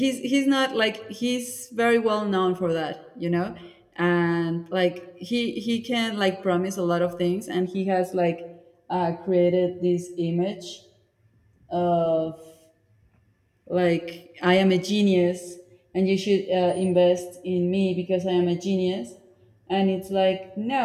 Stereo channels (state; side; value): identical; both; correlation 1.00